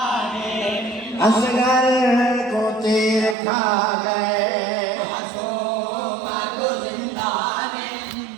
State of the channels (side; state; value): left; drops out; at 3.4 s